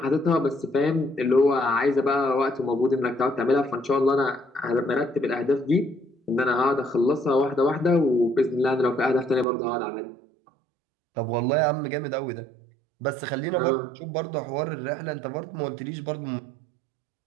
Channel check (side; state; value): left; drops out; at 9.5 s